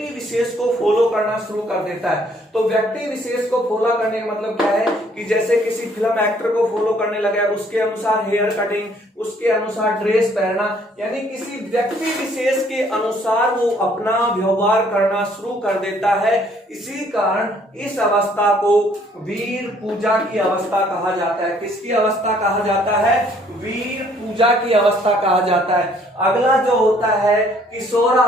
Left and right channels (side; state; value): both; normal; correlation 0.62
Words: विशेष को फॉलो करना शुरू कर देता है। तो व्यक्ति विशेष को फॉलो करने का मतलब क्या है कि जैसे किसी फिल्म एक्टर को फॉलो करने लगा, उसके अनुसार हेयर कटिंग, उसके अनुसार ड्रेस पहनना, यानी किसी व्यक्ति विशेष के अनुसार वो अपना व्यवहार करना शुरू कर देता है। इसी कारण इस अवस्था को वीर पूजा की अवस्था कहा जाता है। किसकी अवस्था कहा जाता है? वीर पूजा की अवस्था कहा जाता है। अगला जो होता है